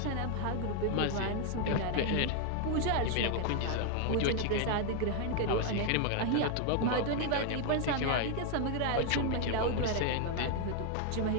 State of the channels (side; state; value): both; different; correlation 0.00